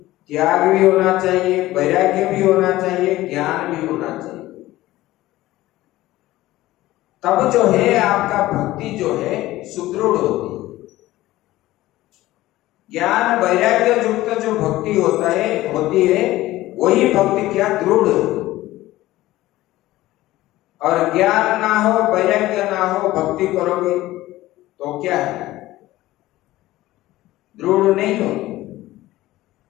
त्याग भी होना चाहिए, वैराग्य भी होना चाहिए, ज्ञान भी होना चाहिए। तब जो है आपका भक्ति जो है सुदृढ़ होती है। ज्ञान वैराग्य युक्त जो भक्ति होती है वही भक्ति क्या दृढ़। और ज्ञान ना हो, वैराग्य ना हो, भक्ति करोगे तो क्या है? दृढ़ नहीं हो।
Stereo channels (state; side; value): quieter; right; 16.6 dB